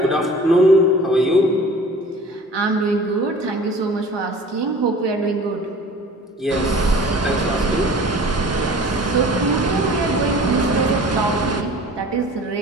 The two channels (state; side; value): normal; both; correlation 0.44